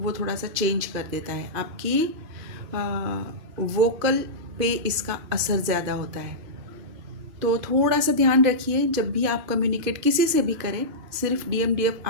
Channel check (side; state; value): left; late; 2.5 ms